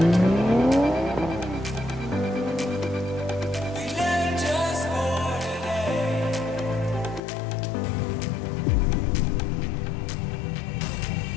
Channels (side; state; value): right; drops out; at 7.2 s